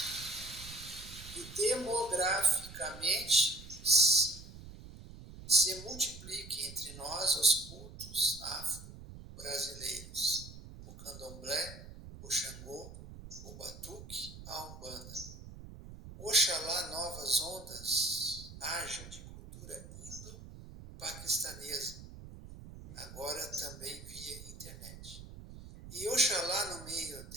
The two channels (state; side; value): noise; right; rumble, 14 dB below the sound